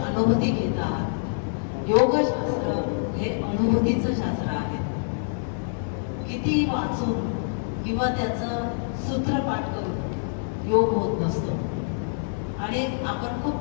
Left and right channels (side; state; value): right; silent; 61 dB below the other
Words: घेत आहात. योगशास्त्र हे अनुभूतीचं शास्त्र आहे. किती वाचून किंवा त्याचं सूत्रपाठ करून योग होत नसतो. आणि आपण खूप